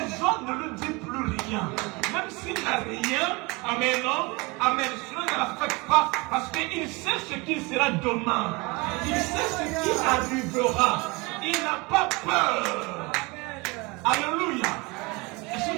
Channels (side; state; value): left; quieter; 26.0 dB